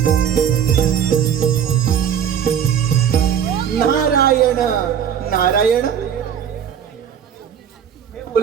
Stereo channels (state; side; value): quieter; left; 8.5 dB